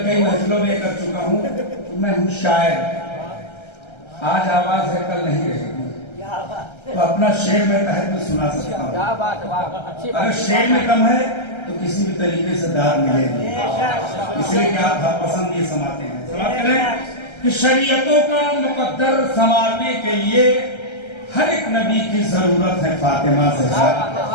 महफिलों में कर चुका हूँ, मैं हूँ शायर। आज आवाज है, कल नहीं रहेगी। तो अपना शेर में तहत में सुना सकता हूँ। अगर शेर में कम है तो किसी भी तरीके से दाद मिलेगी, इसलिए कि आप पसंद ये समाते हैं। समाप्त करें कि शरीयतों का मुकद्दर संवारने के लिए हर एक नबी की जरूरत है फातिमा ज़हरा।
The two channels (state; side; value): late; right; 1.3 ms